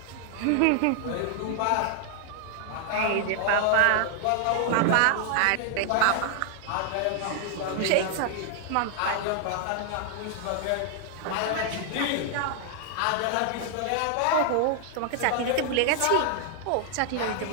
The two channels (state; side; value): different; both; correlation 0.00